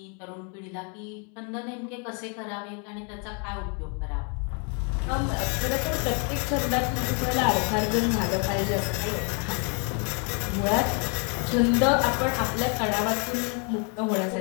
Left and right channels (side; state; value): right; quieter; 37.0 dB